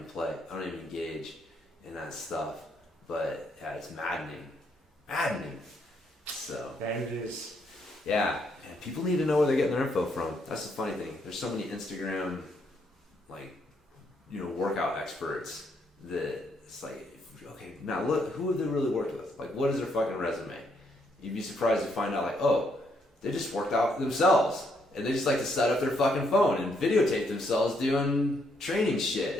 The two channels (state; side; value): normal; both; correlation 0.74